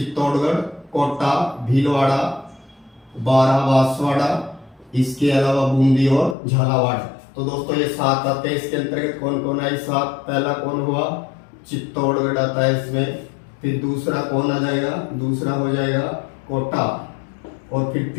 कोटा, भीलवाड़ा, बारा, बांसवाड़ा, इसके अलावा बूंदी और झालावाड़। तो दोस्तों ये 7 आते हैं। इसके अंतर्गत कौन कौन है 7, पहला कौन हुआ, चित्तौड़गढ़ आता है इसमें। फिर दूसरा कौन आ जाएगा, दूसरा हो जाएगा कोटा, और फिर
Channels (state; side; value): drops out; right; at 6.4 s